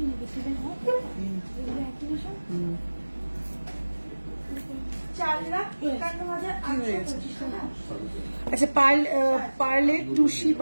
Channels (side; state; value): both; inverted; correlation -1.00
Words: আচ্ছা পার্লের টুসি